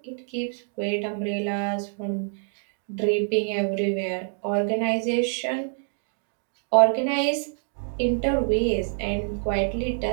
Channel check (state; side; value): silent; left; 55 dB below the other